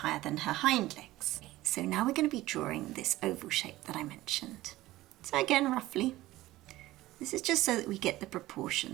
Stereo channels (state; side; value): quieter; left; 17.0 dB